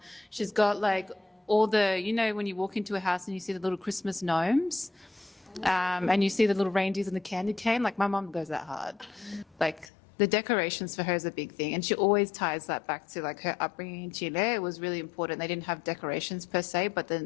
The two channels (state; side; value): drops out; right; at 9.9 s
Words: She's got like all the, when you walk into a house and you see the little Christmas gnomes, and you see the little reindeers and the candy cane. Like my mom goes that hard. Like the decorations for her is a big thing, and she always ties that back to like her upbringing in Chile. It was really important. They didn't have decorations per se, but